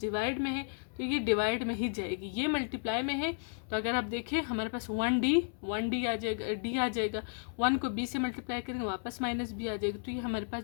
डिवाइड में है, तो ये डिवाइड में ही जाएगी, ये मल्टीप्लाई में है। तो अगर आप देखें हमारे पास 1d आ जाएगा, डी आ जाएगा, 1 को b से मल्टीप्लाई करेंगे वापस माइनस b आ जाएगा, तो ये हमारे पास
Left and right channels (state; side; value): silent; right; 55 dB below the other